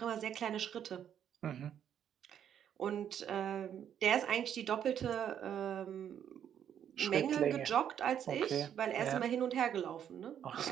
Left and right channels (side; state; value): left; quieter; 9.3 dB